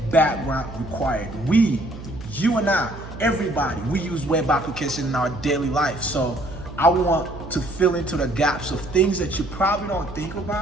background required. You and I, everybody, we use web application in our daily life. So I want to fill into the gaps of things that you probably don't think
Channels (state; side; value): noise; right; hum, 13 dB below the sound